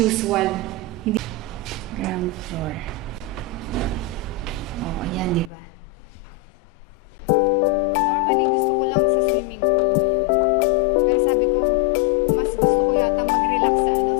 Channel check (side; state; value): right; drops out; at 5.5 s